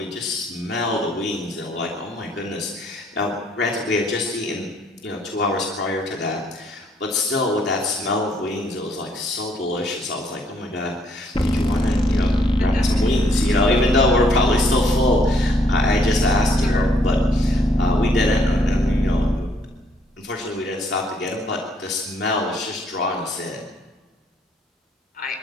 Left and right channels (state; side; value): normal; both; correlation 0.67